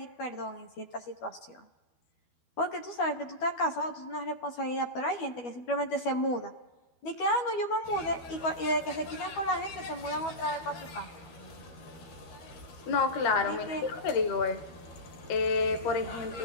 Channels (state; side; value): late; right; 12 ms